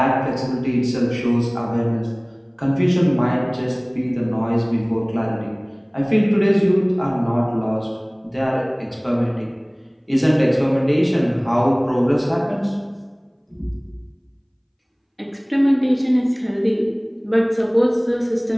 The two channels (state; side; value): identical; both; correlation 1.00